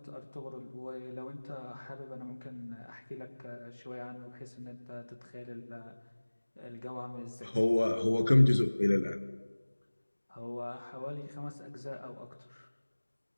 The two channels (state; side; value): inverted; both; correlation -1.00